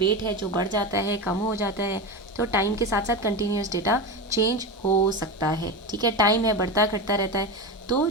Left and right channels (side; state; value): both; normal; correlation 0.20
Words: है जो बढ़ जाता है, कम हो जाता है, तो टाइम के साथ साथ कंटिन्यूस डेटा चेंज हो सकता है, ठीक है। टाइम है बढ़ता घटता रहता है, तो